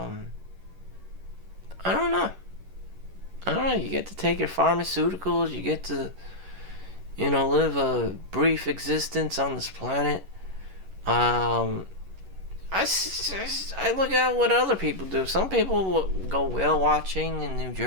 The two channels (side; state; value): left; late; 11 ms